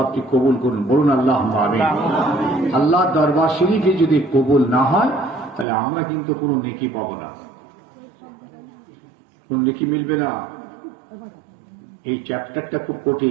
আপনি কবুল করুন, বলুন আল্লাহুম্মা আমিন। আল্লাহর দরবার শরীফে যদি কবুল না হয় তাহলে আমরা কিন্তু কোনো নেকি পাবো না, কোন নেকি মিলবে না। এই চ্যাপ্টারটা খুব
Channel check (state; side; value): drops out; left; at 5.7 s